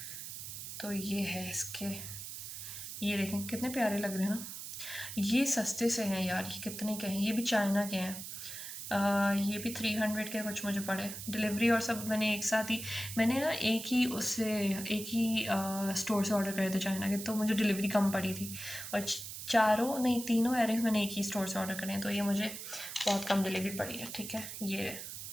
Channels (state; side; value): noise; right; hiss, 9 dB below the sound